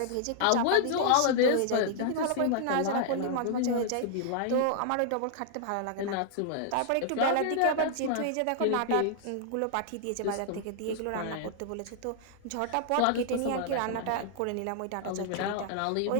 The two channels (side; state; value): both; different; correlation -0.01